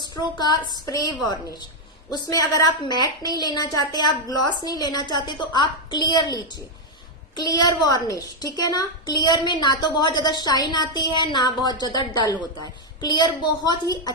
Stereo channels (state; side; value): normal; both; correlation 0.01